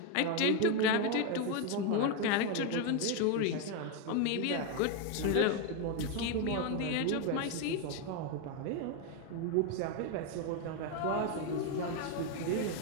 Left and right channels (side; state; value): both; different; correlation 0.02